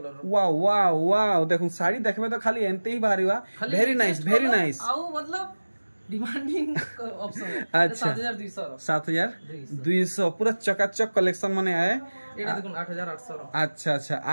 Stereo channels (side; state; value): both; inverted; correlation -1.00